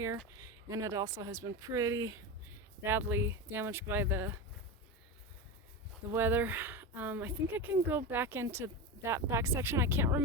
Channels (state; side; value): normal; both; correlation 0.20